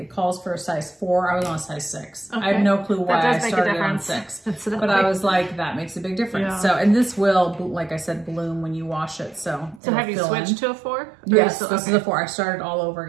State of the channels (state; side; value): drops out; left; at 9.8 s